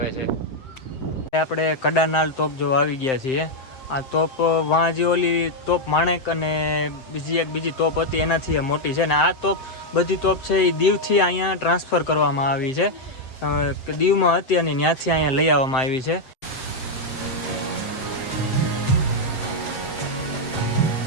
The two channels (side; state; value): right; late; 7.7 ms